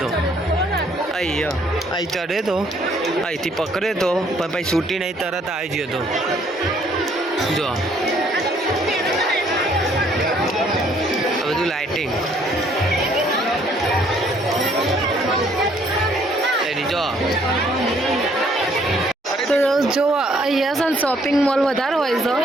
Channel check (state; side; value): normal; both; correlation 0.64